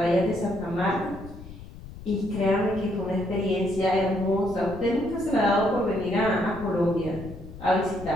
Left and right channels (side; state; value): left; noise; rumble, 15 dB below the sound